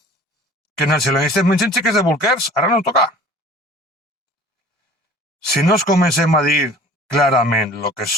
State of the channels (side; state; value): both; normal; correlation 0.47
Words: Que nacionalistes mengen xiques de bolquers, ara no toca. Si no es comencem a dir clarament el que